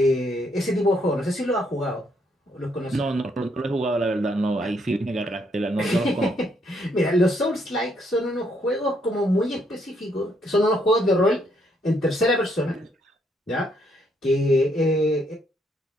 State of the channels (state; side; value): normal; both; correlation 0.72